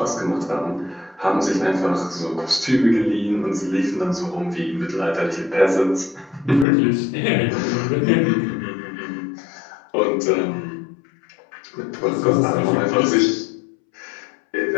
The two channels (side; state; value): right; drops out; at 6.7 s